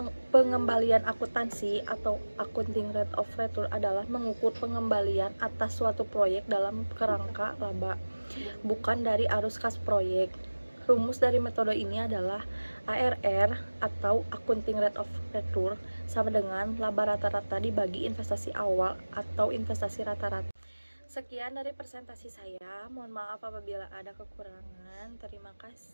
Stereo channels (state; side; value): inverted; both; correlation -1.00